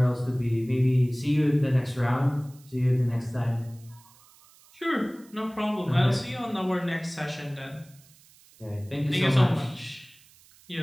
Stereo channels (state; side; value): noise; right; hiss, 27 dB below the sound